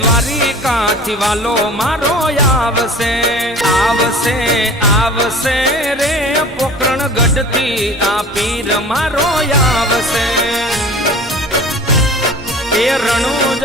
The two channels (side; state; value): both; normal; correlation 0.42